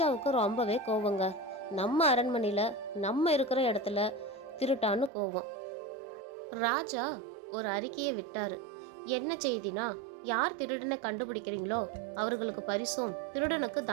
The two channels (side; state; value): left; drops out; at 5.1 s